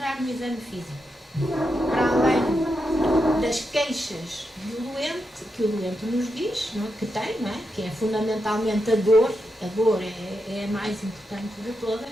no exame físico? Para além das queixas do doente, que o doente nos diz, não é? Que tem, não é? Que é fundamentalmente a dor é a mais importante de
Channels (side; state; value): both; normal; correlation 0.85